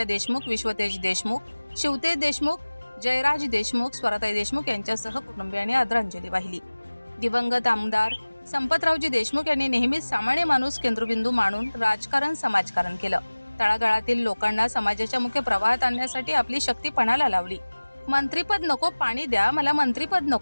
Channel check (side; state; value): both; inverted; correlation -1.00